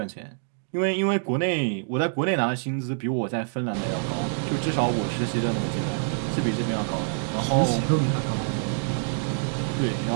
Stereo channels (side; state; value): left; silent; digital silence